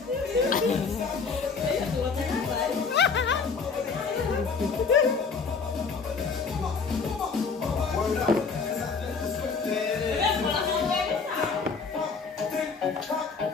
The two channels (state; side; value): quieter; right; 5.1 dB